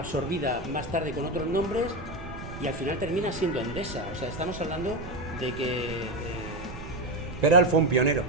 más tarde con otros nombres y al final termina siendo Endesa. O sea, estamos hablando de que... Peral fue un pionero.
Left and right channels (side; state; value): right; noise; rumble, 11 dB below the sound